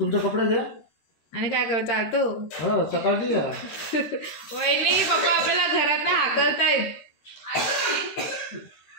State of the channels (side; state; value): right; late; 13 ms